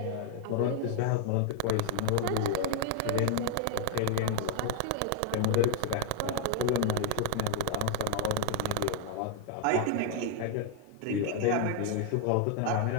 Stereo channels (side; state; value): both; different; correlation 0.00